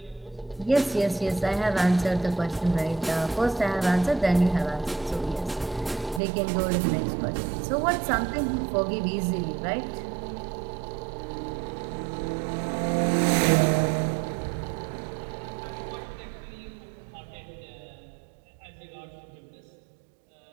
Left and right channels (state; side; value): drops out; left; at 6.2 s